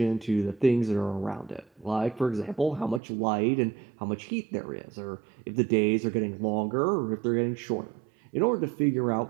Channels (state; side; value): drops out; left; at 3.0 s